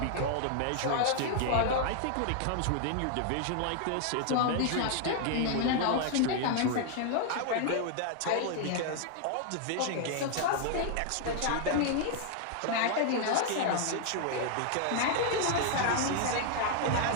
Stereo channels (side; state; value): both; different; correlation 0.00